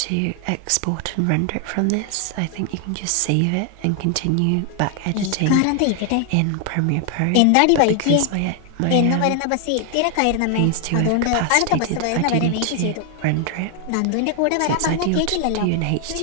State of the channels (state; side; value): different; both; correlation 0.00